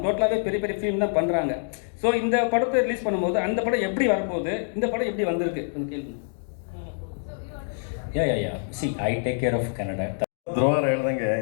டோட்டலாகவே பெரிய பெரிய ஃபிலிம் தான் பண்ணுறாங்க. ஸோ இந்த படத்தை ரிலீஸ் பண்ணும்போது அந்த படம் எப்படி வரப்போகுது, இந்த படம் எப்படி வந்திருக்கு அந்த கேள்வி. See I take care of Kannada. ಧ್ರುವರ ಹೇಳ್ದಂಗೆ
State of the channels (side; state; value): right; silent; digital silence